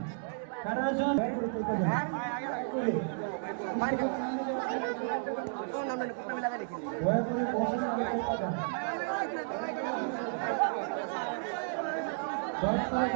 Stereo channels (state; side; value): silent; left; digital silence